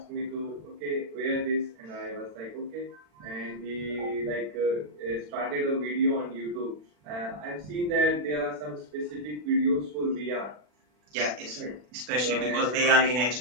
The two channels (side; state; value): left; late; 40 ms